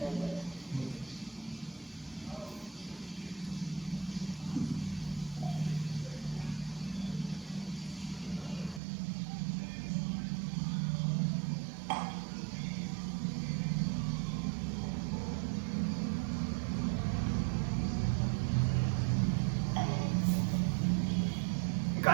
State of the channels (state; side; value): drops out; left; at 8.8 s